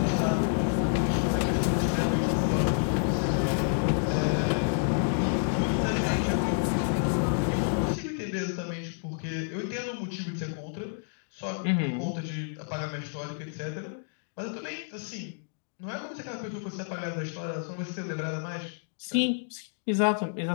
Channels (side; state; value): right; silent; digital silence